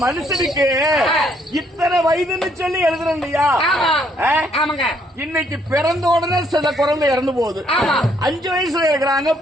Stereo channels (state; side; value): normal; both; correlation 0.69